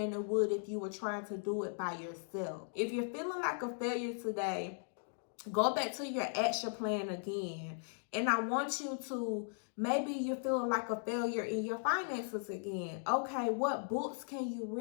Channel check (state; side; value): silent; right; digital silence